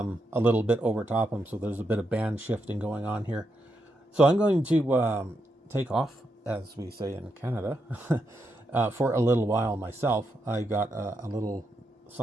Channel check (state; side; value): normal; both; correlation 0.83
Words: little bit over top him. So there's a bit of band shifting going on here. So I'm going to take off, as we say in Canada, for a little while myself. I got a little